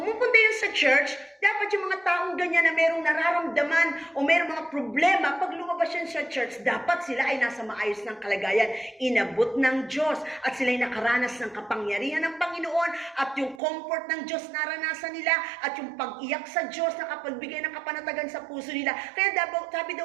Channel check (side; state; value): left; drops out; at 13.6 s